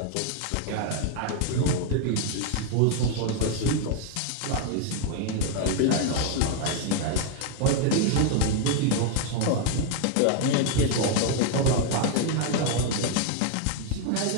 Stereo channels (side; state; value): both; different; correlation 0.01